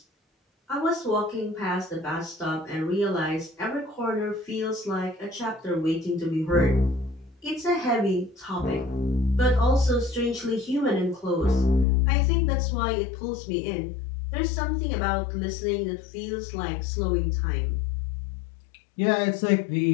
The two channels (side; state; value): right; drops out; at 11.9 s